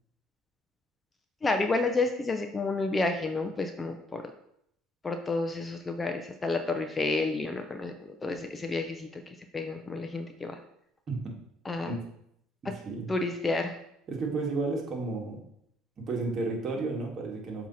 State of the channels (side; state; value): both; normal; correlation 0.69